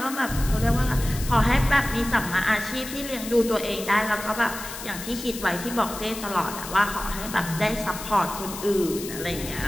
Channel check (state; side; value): noise; left; hiss, 10 dB below the sound